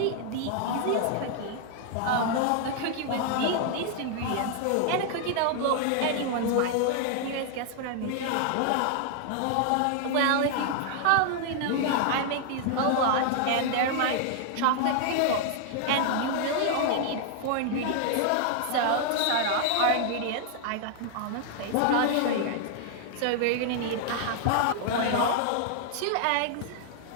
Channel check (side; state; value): both; different; correlation 0.00